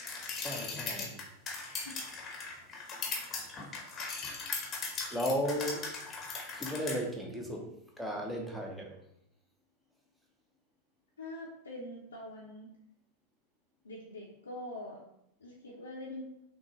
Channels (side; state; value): both; normal; correlation 0.33